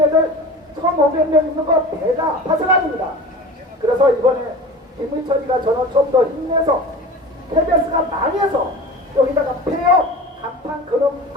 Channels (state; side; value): normal; both; correlation 0.35